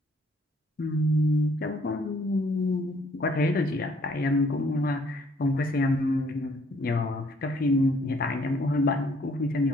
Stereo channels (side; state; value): both; normal; correlation 0.64